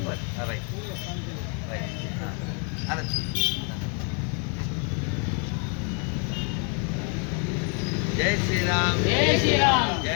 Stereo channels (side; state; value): right; quieter; 37.3 dB